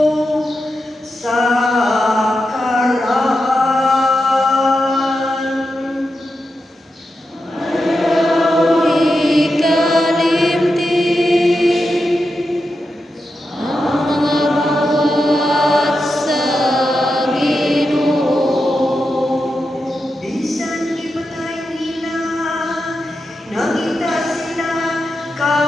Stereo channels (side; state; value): both; normal; correlation 0.88